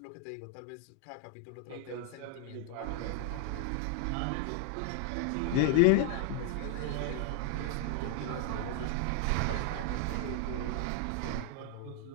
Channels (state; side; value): different; both; correlation 0.00